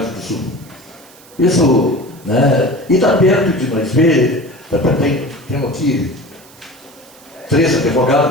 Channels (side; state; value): right; noise; hiss, 25 dB below the sound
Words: do Sul. Isso, né? E está perto de nós ver, temos aqui 3